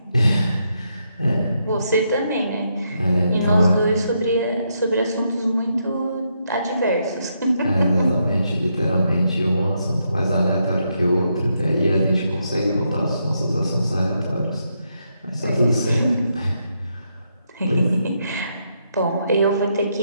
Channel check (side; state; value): both; inverted; correlation -0.79